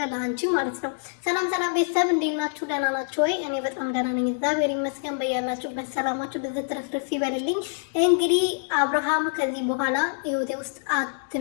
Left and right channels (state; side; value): silent; right; digital silence